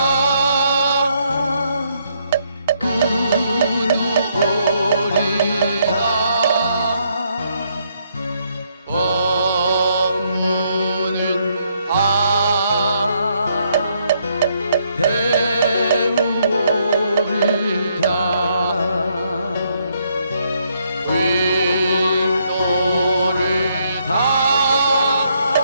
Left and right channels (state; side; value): inverted; both; correlation -0.73